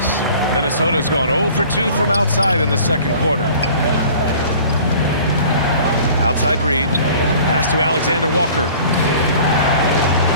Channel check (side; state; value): both; inverted; correlation -0.47